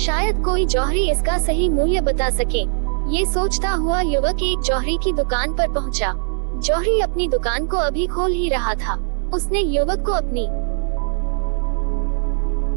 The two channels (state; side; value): silent; left; digital silence